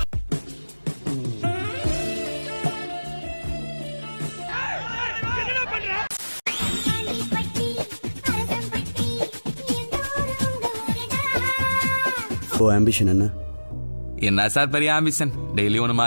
ஆம்பிஷன் என்ன? என்ன சார் பெரிய ஆம்பிஷன்? டெய்லி ஒன்று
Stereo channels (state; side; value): inverted; both; correlation -1.00